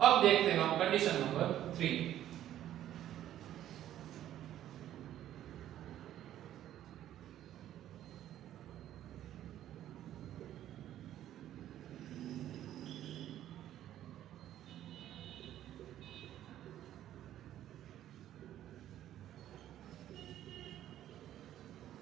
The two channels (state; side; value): quieter; left; 12.1 dB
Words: अब देखते हैं हम कंडीशन नंबर 3।